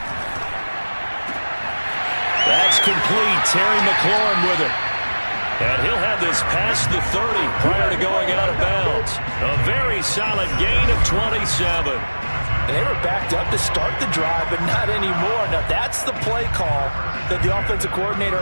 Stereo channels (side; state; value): both; inverted; correlation -1.00